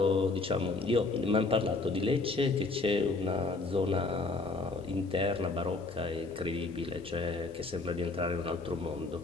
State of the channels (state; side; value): quieter; right; 3.6 dB